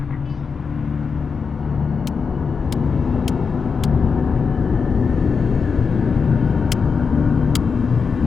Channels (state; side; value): quieter; right; 5.5 dB